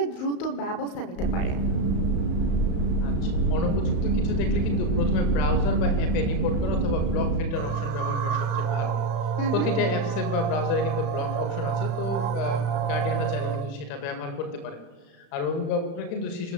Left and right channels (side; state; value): right; late; 36 ms